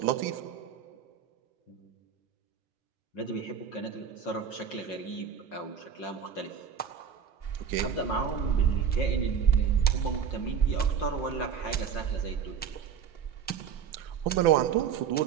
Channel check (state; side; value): quieter; left; 7.5 dB